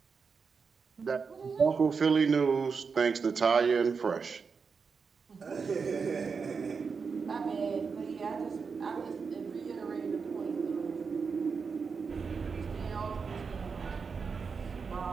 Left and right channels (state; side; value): quieter; left; 5.4 dB